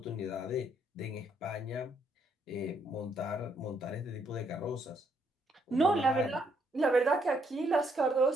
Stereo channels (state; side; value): normal; both; correlation 0.72